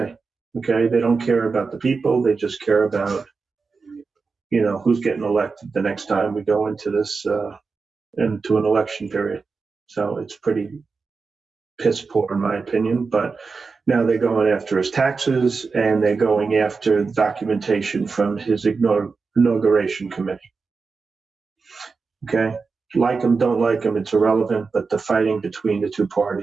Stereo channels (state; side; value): quieter; left; 4.6 dB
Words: Okay. They don't care about the people. They just care about who's getting elected the next time we go into this, into an election period. So it's pretty piss poor in my opinion, but now they're going after his taxes and they're going after the documentation from his inauguration committee. Okay. Like him, don't like him, it's irrelevant, but the fighting between the two